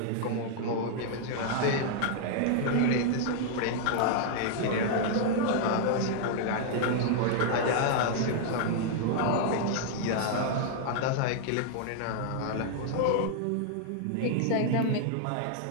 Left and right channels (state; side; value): different; both; correlation -0.01